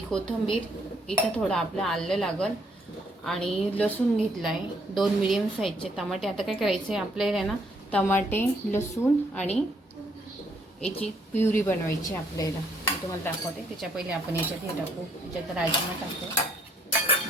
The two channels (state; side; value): normal; both; correlation 0.69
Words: कोथिंबीर, इथं थोडं आपलं आलं लागल आणि लसूण घेतला आहे, 2 मीडियम साईजचे टमाटे। आता काय करायचं आहे आपल्याला ना, टमाटे, लसूण आणि याची प्युरी बनवायची आपल्याला। मी तुम्हाला दाखवते। त्याच्या पहिले आपण याच्यात हे टाकू, याच्यात राजमा टाकू,